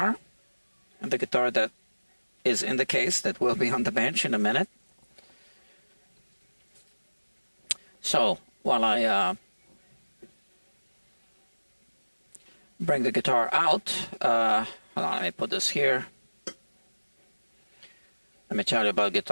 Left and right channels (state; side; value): inverted; both; correlation -1.00